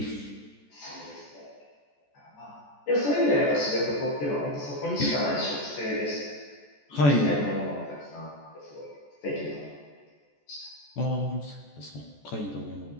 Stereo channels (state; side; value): late; right; 14 ms